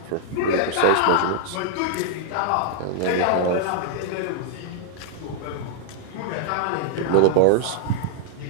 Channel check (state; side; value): different; both; correlation -0.01